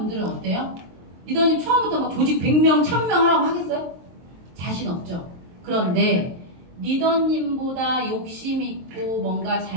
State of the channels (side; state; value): left; late; 23 ms